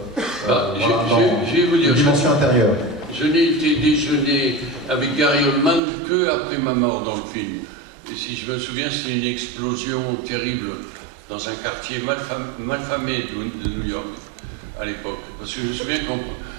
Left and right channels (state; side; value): drops out; left; at 5.8 s